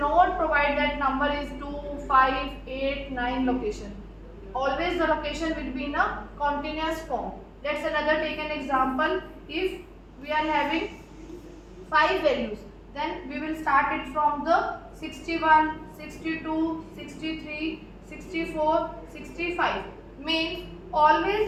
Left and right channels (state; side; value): identical; both; correlation 1.00